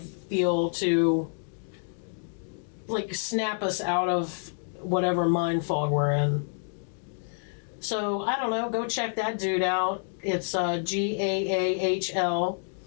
to like snap us out of whatever mind fog we're in. So, I don't know, go check that dude out. It's GAAHL,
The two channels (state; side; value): silent; right; 59 dB below the other